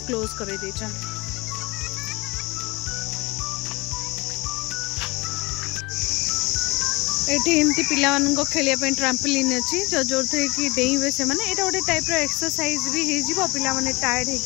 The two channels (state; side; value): quieter; right; 24.2 dB